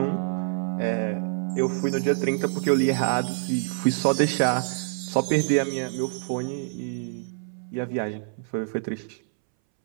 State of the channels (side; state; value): left; silent; 61 dB below the other